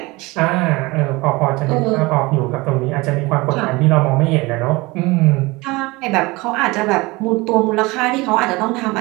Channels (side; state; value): left; quieter; 23.0 dB